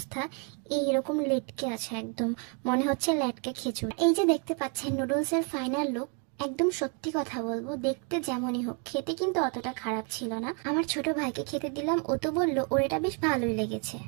এইরকম লেটকে আছে, একদম মনে হচ্ছে ল্যাটকে খিচুড়ি। এই যে দেখতে পাচ্ছেন নুডলসের ফাইনাল লুক। একদম সত্যি কথা বলবো, দেখতে যেমনই হোক খেতে কিন্তু অতটা খারাপ ছিল না। আমার ছোট ভাইকে খেতে দিলাম, ও তো বললো ওর এটা বেশ ভালোই লেগেছে।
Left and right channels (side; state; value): left; quieter; 36.4 dB